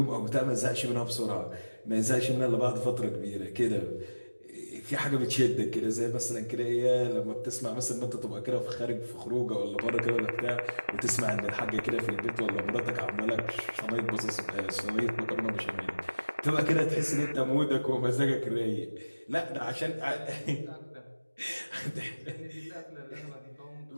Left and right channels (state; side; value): inverted; both; correlation -1.00